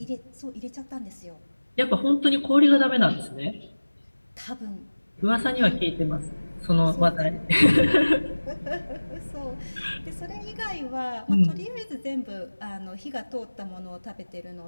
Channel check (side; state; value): both; inverted; correlation -1.00